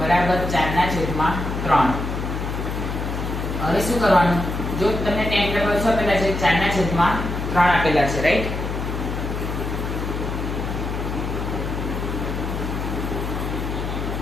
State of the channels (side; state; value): left; noise; hum, 3 dB below the sound